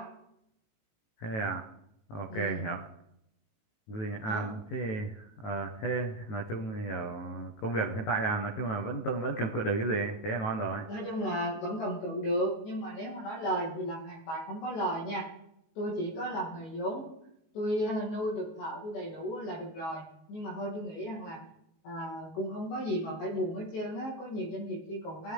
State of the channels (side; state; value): right; late; 19 ms